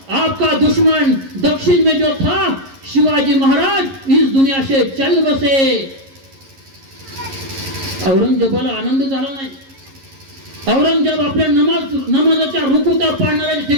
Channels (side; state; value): left; late; 11 ms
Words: आपका दुश्मन दक्षिण में जो था शिवाजी महाराज इस दुनिया से चल बसे. औरंगजेबाला आनंद झाला नाही. औरंगजेब आपल्या नमाजाच्या रुकुता पाडणाऱ्या